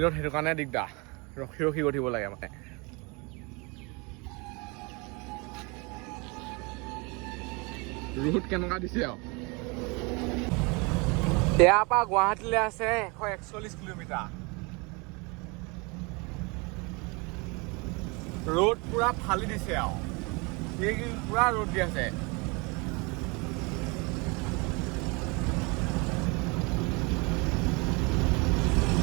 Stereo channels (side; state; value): left; quieter; 28.7 dB